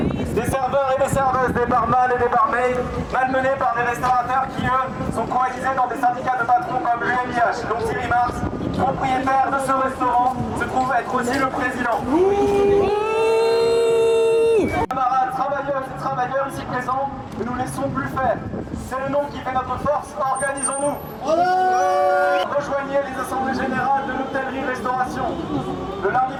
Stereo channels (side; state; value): both; identical; correlation 1.00